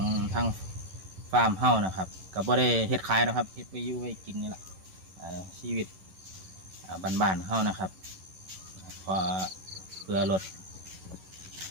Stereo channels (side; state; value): left; late; 11 ms